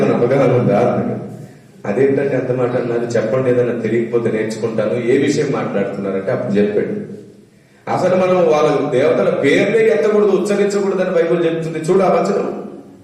అవగాహన ఉందా అన్నాడు. అదేంటంటే అంత మాట అన్నారు, చెప్పండి, ఏదైనా తెలియకపోతే నేర్చుకుంటాను. ఏ విషయం మాట్లాడుతున్నారంటే అప్పుడు చెప్పాడు, అసలు మనం వాళ్ళ దేవతల పేర్లే ఎత్తకూడదు, ఉచ్చరించకూడదు అని బైబిల్ చెప్తుంది. చూడు ఆ వచనం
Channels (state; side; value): identical; both; correlation 1.00